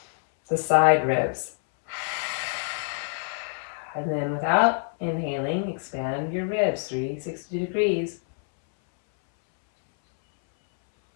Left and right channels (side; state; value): right; silent; 61 dB below the other